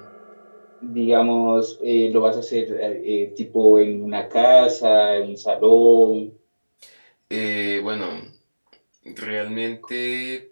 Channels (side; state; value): both; inverted; correlation -1.00